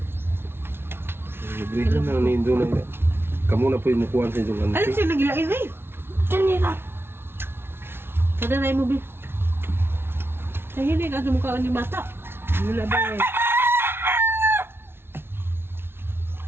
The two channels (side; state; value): left; late; 0.11 ms